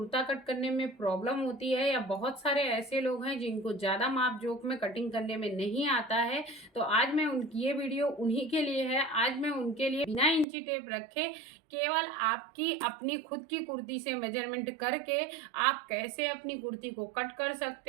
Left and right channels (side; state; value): left; drops out; at 10.5 s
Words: कट करने में प्रॉब्लम होती है, या बहुत सारे ऐसे लोग हैं जिनको ज़्यादा माप जोख में कटिंग करने में नहीं आता है, तो आज मैं उनकी ये वीडियो उन्हीं के लिए है। आज मैं उनके लिए बिना इंची टेप रखे केवल आपकी अपनी खुद की कुर्ती से मेजरमेंट करके आप कैसे अपनी कुर्ती को कट कर